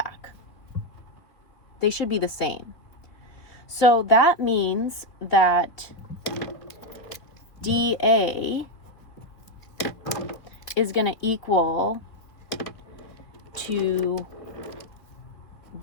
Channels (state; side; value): late; right; 3.1 ms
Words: They should be the same. So that means that dA is going to equal to